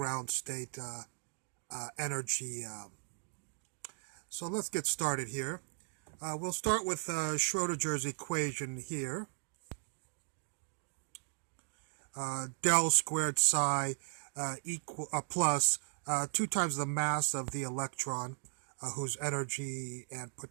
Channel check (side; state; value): left; silent; 53 dB below the other